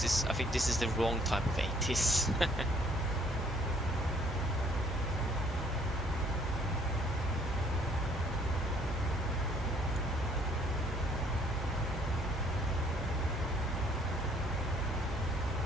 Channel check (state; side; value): normal; both; correlation 0.62